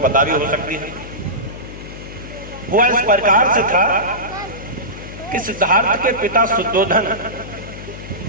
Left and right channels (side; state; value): left; noise; hum, 12 dB below the sound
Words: भी हो सकती है। हुआ इस प्रकार से था कि सिद्धार्थ के पिता शुद्धोधन